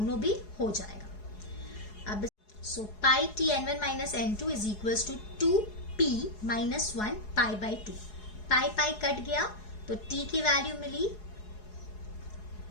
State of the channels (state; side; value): late; right; 4.8 ms